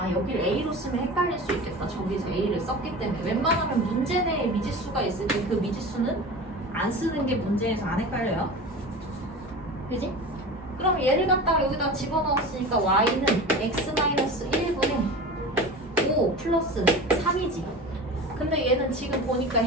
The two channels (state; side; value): normal; both; correlation 0.33